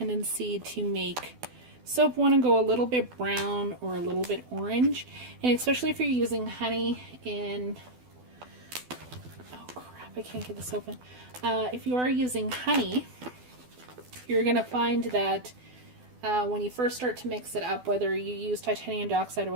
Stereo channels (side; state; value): left; late; 12 ms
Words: to make soap want to go a little bit brown or a little bit orange, and especially if you're using honey in, oh crap, I can't get this open. If you are using honey, you're going to find that when you first start to mix it up, whether you use titanium dioxide or